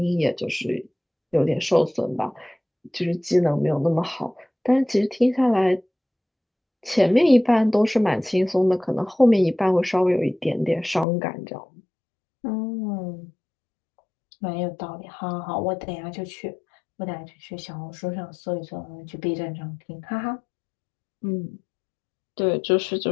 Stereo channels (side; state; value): right; drops out; at 11.1 s